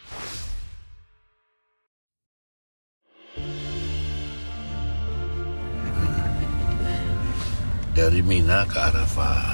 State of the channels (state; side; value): inverted; both; correlation -1.00